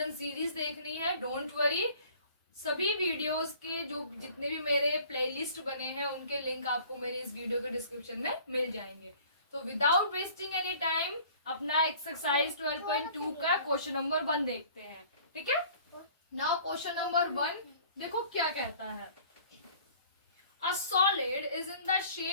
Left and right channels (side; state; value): both; inverted; correlation -0.51